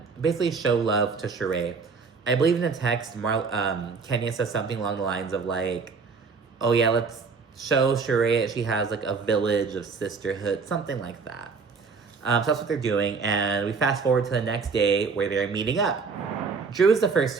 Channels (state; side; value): quieter; left; 5.0 dB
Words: basically show love to Shereé. I believe in the text, Kenya says something along the lines of like, oh yeah, let's show Shereé that she has like a village of sisterhood, something like that. So that's what they're doing, and we fast forward to the next day where they're meeting up. Drew is the first